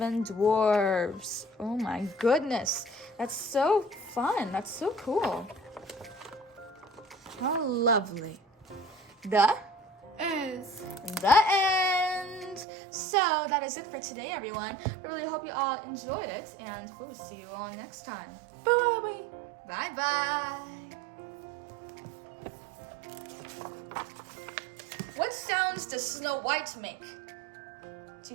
Dwarfs. Oh my goodness, that's so fun. That's so cool. How lovely. The end. So that is it for today, everyone. I really hope you all enjoyed it, and we'll see you all next time. Bye. Bye-bye. What sounds does Snow White make? Do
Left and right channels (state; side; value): drops out; left; at 12.7 s